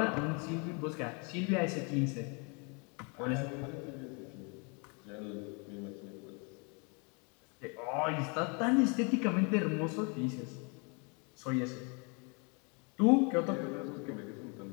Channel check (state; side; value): quieter; right; 34.0 dB